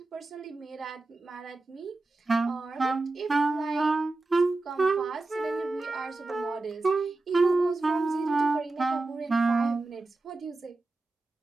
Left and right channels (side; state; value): left; quieter; 3.2 dB